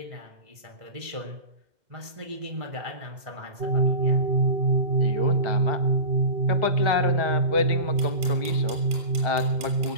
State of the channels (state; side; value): late; left; 2.0 ms